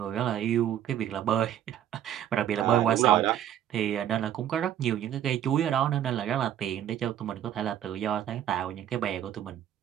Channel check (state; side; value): quieter; left; 10.7 dB